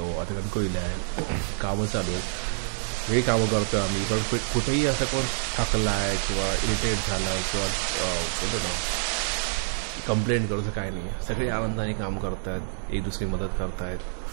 आता कणकवलीला आहे कामं चालू आहेत हे कामं करतो आम्ही पण कुठेही असं कोण थकला आहे किंवा इरिटेट झाला आहे किंवा बोलतो ना कंप्लेंट करूचं काय नाही सगळे आनंदाने काम करत आहेत एक दुसरी मदत करतायत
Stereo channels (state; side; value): silent; left; digital silence